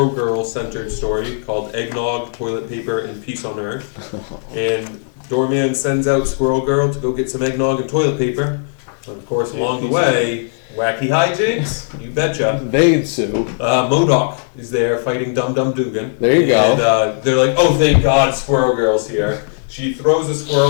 Girl centered story called Eggnog, Toilet Paper, and Peace on Earth. And Doorman sends out Squirrel Girl to go get some eggnog and toilet paper. But of course, along the way, wacky hijinks, you betcha. They ensue. MODOK is there fighting Dum Dum Dugan. There you go. And they're like, "Oh, thank God, Squirrel Girl's here." She throws a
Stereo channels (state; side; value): silent; right; digital silence